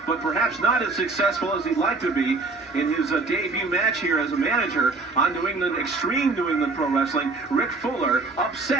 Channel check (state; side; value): quieter; left; 3.7 dB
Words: but perhaps not as successful as he'd like to be in his debut match here as a manager on New England, Extreme New England Pro Wrestling. Rick Fuller